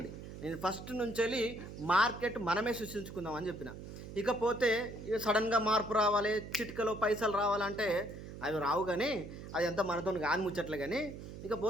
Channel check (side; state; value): right; noise; hum, 11 dB below the sound